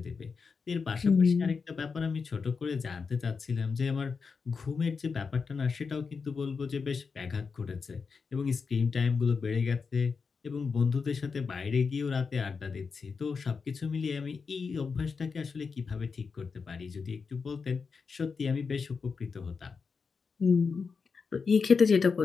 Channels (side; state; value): right; quieter; 5.2 dB